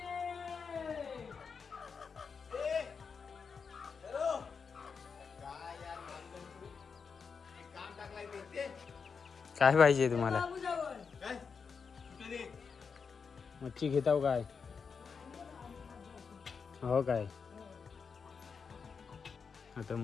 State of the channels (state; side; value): quieter; right; 5.7 dB